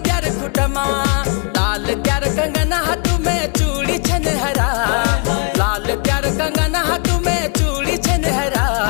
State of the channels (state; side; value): quieter; right; 35.4 dB